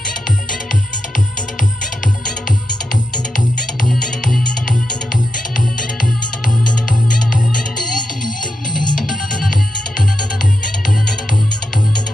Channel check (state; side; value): normal; both; correlation 0.87